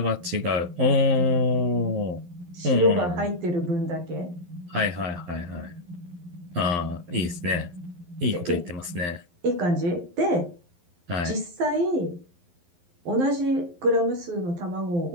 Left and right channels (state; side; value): late; left; 11 ms